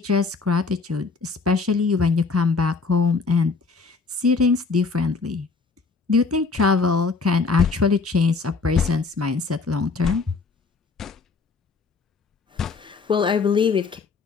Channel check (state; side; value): quieter; right; 4.5 dB